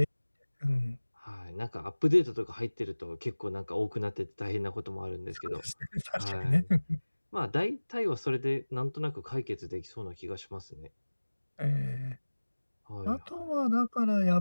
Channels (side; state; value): both; inverted; correlation -1.00